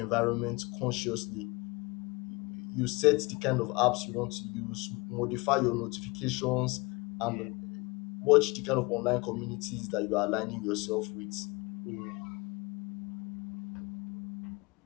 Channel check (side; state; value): right; quieter; 25.4 dB